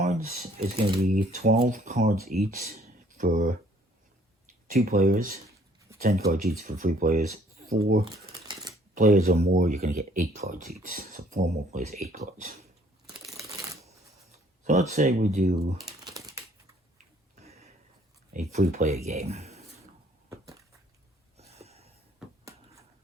It's going to be 12 cards each for 2 players, 10 cards each for 3 players. 4 players or more, you're going to get 8 cards each. So 4 more players, 8 cards. So let's say we do a 3-player game.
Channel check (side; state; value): both; normal; correlation 0.60